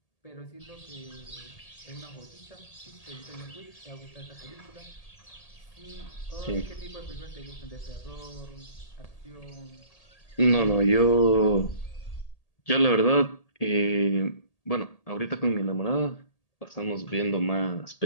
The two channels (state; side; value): late; right; 1.8 ms